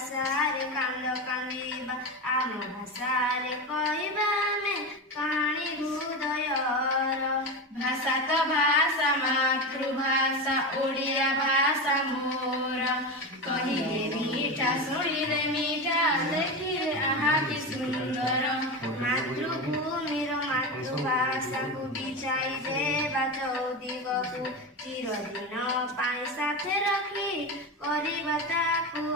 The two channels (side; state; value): both; normal; correlation 0.20